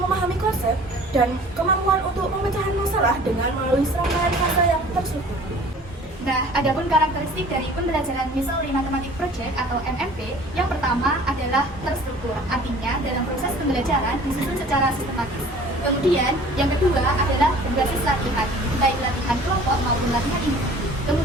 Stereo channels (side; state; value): both; normal; correlation 0.48